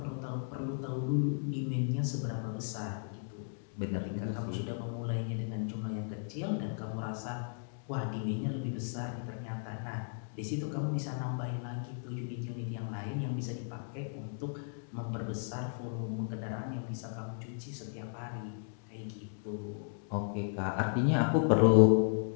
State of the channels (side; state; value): right; silent; digital silence